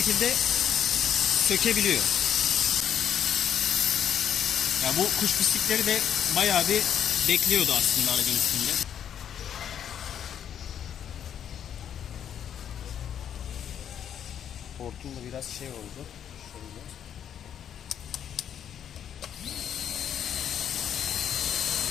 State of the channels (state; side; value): quieter; right; 9.3 dB